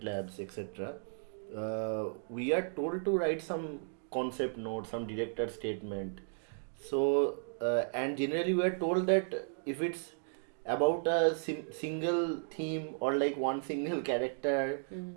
labs, etc., we are told to write some concept note, some director statement. So, and generally we are told that if it's about a single theme or like one single character,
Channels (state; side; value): silent; left; digital silence